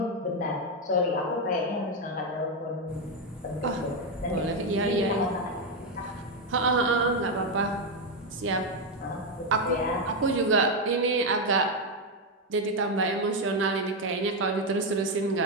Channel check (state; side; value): normal; both; correlation 0.05